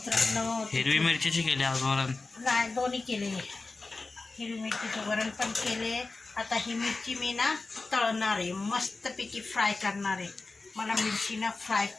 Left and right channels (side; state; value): right; quieter; 3.6 dB